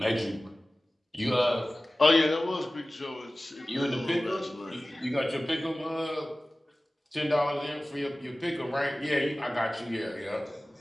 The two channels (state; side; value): normal; both; correlation 0.97